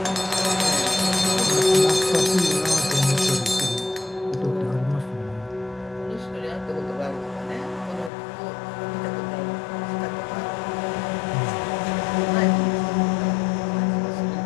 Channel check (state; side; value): drops out; right; at 8.1 s